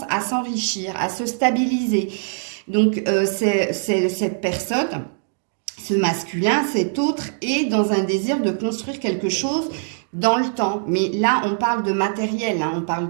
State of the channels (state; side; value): silent; left; digital silence